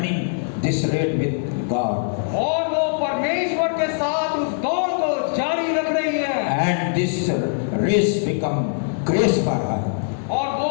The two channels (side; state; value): right; silent; digital silence